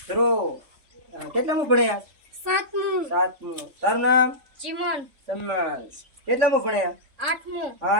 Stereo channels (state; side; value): late; left; 3.5 ms